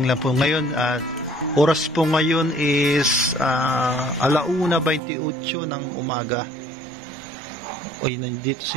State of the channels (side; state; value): left; drops out; at 5.0 s